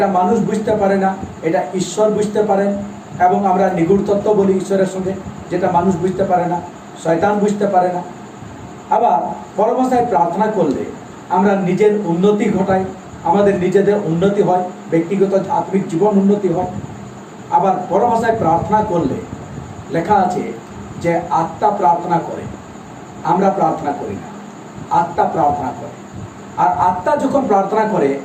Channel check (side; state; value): both; identical; correlation 1.00